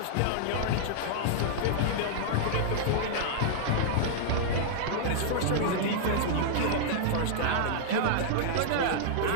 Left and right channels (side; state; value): both; different; correlation -0.01